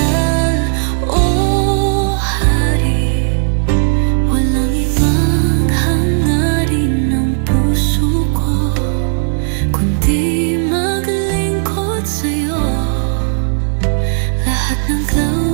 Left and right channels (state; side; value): silent; left; digital silence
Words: O Hari. Walang ibang hangarin ng puso ko, kundi maglingkod sa'yo. Lahat ng